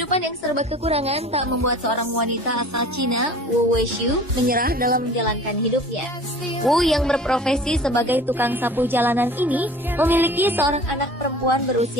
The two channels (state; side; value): normal; both; correlation 0.44